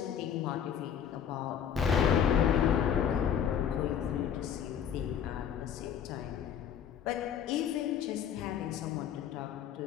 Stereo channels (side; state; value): right; quieter; 8.6 dB